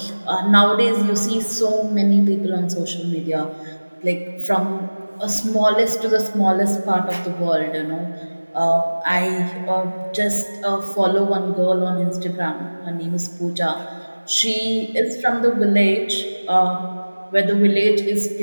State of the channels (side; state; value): both; inverted; correlation -1.00